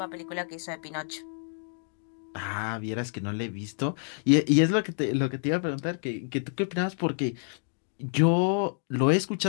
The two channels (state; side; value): silent; right; digital silence